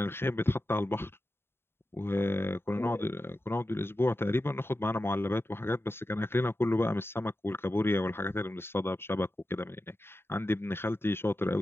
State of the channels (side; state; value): right; late; 0.11 ms